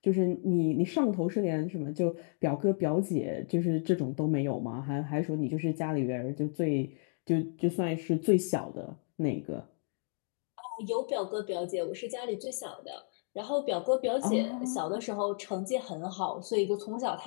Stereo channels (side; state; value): right; silent; 56 dB below the other